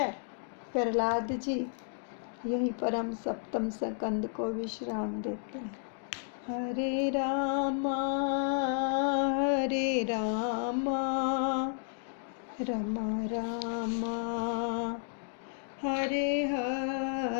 प्रहलाद जी। यहीं पर हम सप्तम स्कंद को विश्राम देते हैं। हरे रामा रामा रामा हरे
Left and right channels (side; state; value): right; silent; digital silence